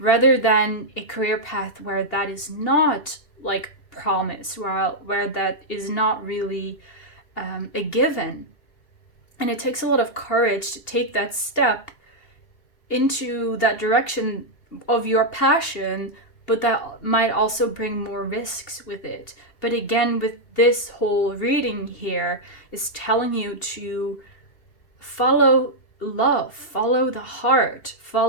than a career path where that is not like promised, where that is not really a given. And it takes a lot of courage to take that step into that direction of your passion, but that might also bring more risks with it. But again, with this whole reading here is telling you to follow love, follow the heart,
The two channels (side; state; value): right; late; 2.8 ms